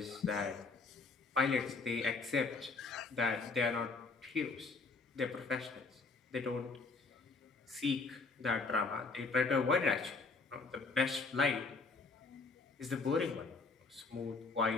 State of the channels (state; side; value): quieter; right; 4.1 dB